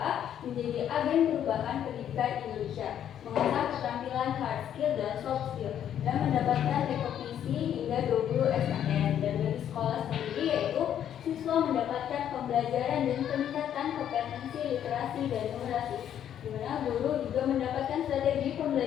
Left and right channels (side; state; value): right; quieter; 10.0 dB